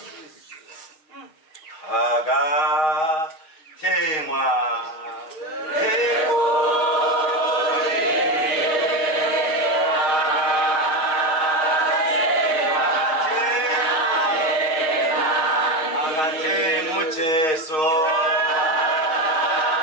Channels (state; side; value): late; right; 6.4 ms